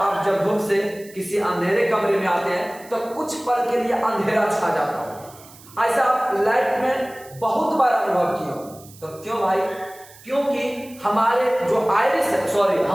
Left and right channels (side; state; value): right; noise; hiss, 22 dB below the sound